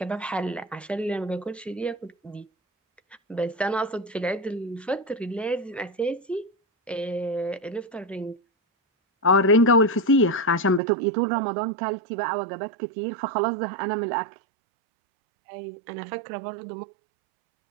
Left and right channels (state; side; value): drops out; left; at 10.8 s